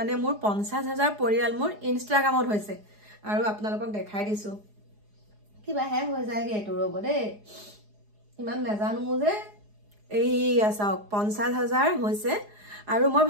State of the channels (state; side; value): late; left; 4.8 ms